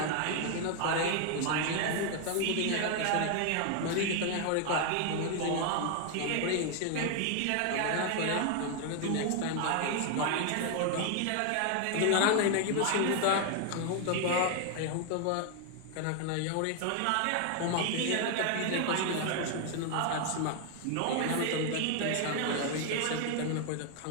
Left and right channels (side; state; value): both; different; correlation 0.00